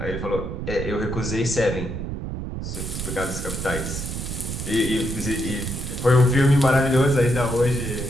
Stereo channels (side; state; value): right; noise; rumble, 5 dB below the sound